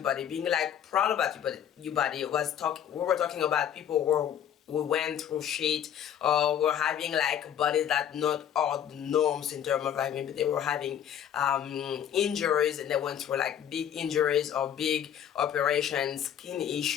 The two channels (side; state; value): right; quieter; 9.6 dB